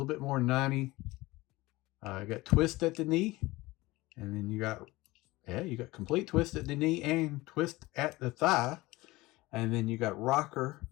bit more than 90. You got twist at the knee. And then you got complete twist at the knee and twist at the thigh. And then you got rocker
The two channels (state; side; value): quieter; right; 20.1 dB